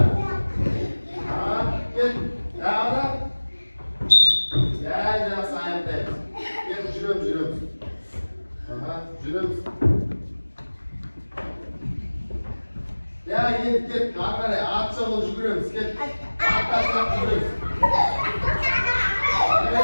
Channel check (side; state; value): both; inverted; correlation -1.00